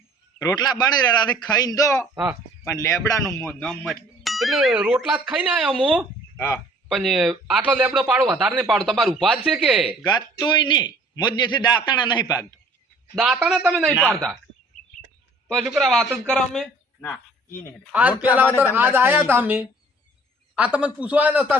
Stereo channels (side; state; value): both; normal; correlation 0.54